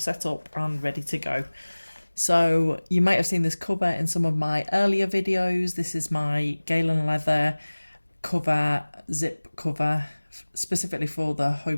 up and ready to go. So you might have seen this cover in some of my earlier videos. This is my Galen Leather cover, zip cover, specifically for the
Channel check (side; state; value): both; inverted; correlation -1.00